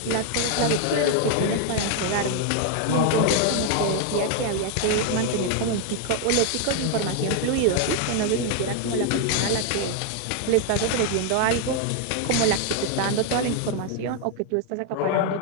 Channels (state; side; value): different; both; correlation 0.00